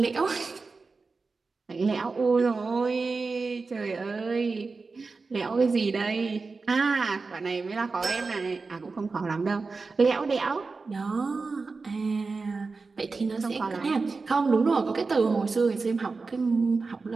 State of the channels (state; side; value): quieter; left; 4.2 dB